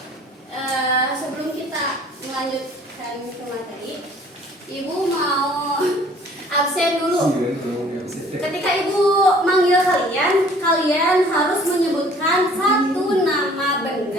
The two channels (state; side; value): normal; both; correlation 0.54